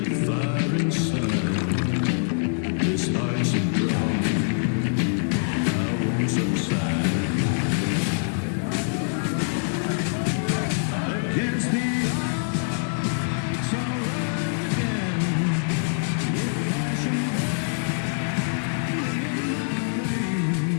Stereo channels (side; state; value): right; silent; digital silence